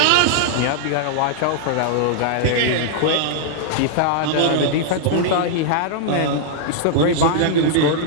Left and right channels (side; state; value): both; different; correlation -0.01